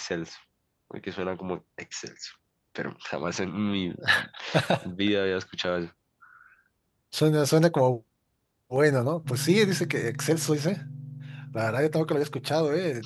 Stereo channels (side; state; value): both; identical; correlation 1.00